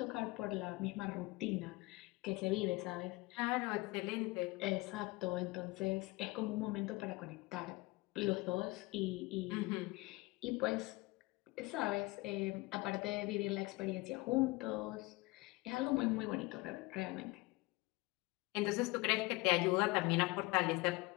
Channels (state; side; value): quieter; right; 22.6 dB